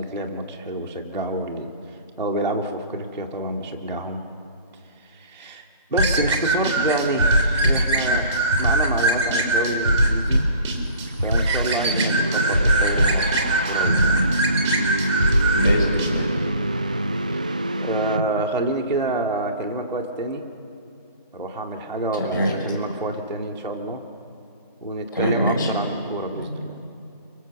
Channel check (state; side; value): inverted; both; correlation -0.47